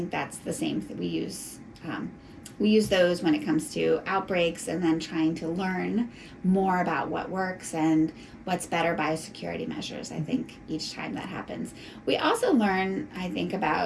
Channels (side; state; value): both; identical; correlation 1.00